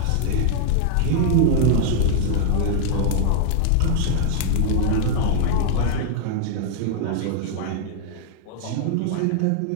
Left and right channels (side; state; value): both; different; correlation -0.01